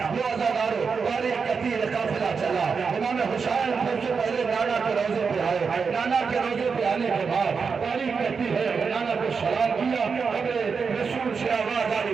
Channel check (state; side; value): quieter; left; 5.5 dB